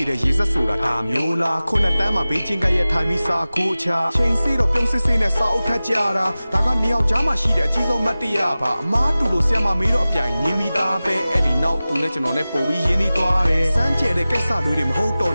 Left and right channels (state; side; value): inverted; both; correlation -0.97